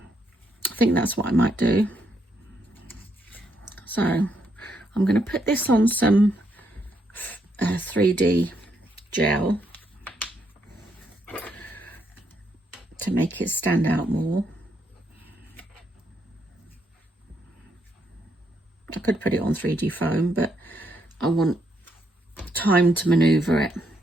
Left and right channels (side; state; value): both; normal; correlation 0.76